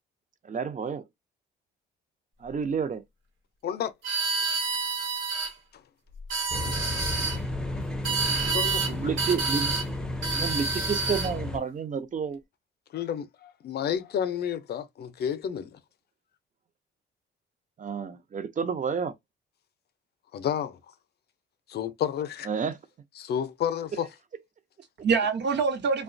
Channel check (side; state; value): both; normal; correlation 0.20